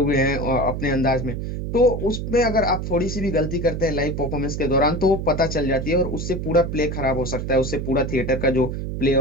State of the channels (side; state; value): right; noise; hum, 4 dB below the sound